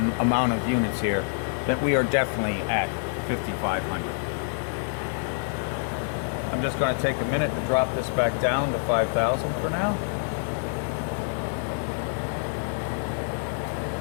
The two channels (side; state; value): right; silent; digital silence